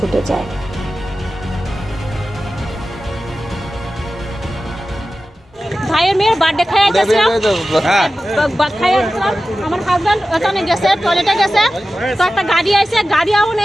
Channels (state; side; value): normal; both; correlation 0.94